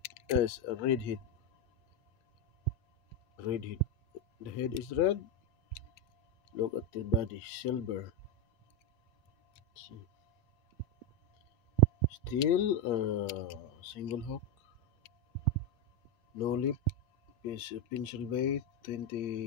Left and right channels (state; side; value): late; right; 8.7 ms